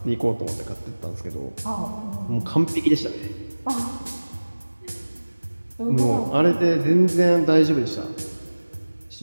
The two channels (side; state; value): both; inverted; correlation -1.00